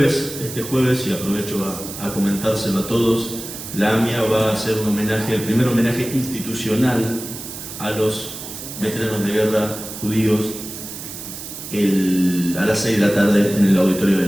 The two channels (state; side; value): noise; right; hiss, 10 dB below the sound